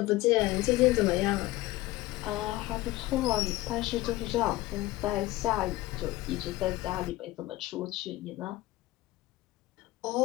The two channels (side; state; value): right; quieter; 17.9 dB